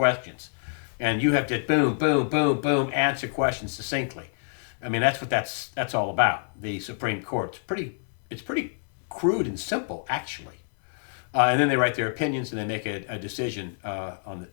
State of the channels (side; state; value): right; silent; 60 dB below the other